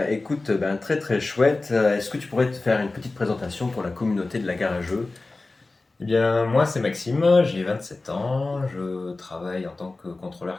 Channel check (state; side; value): quieter; right; 3.3 dB